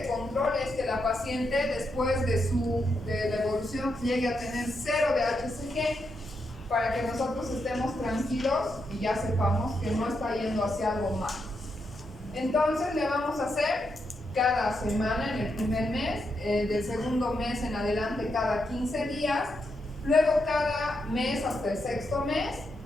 control es que la paciente, después de la evolución, llegue a tener 0 de HCG, para que nosotros estemos tranquilos y ya sepamos que no está yendo hacia algo mal. Entonces le vamos a hacer cada semana en el primer mes, del segundo mes en adelante cada 15 días, luego cada mes hasta el sexto mes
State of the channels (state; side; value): normal; both; correlation 0.82